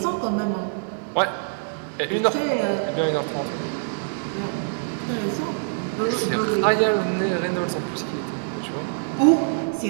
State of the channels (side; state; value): left; silent; 62 dB below the other